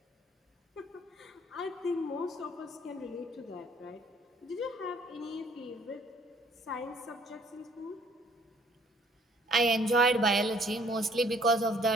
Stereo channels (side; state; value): both; normal; correlation 0.60